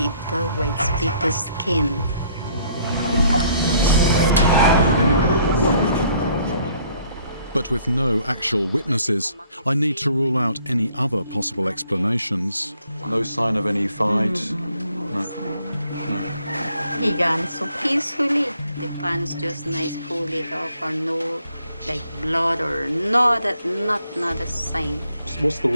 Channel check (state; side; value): inverted; both; correlation -0.64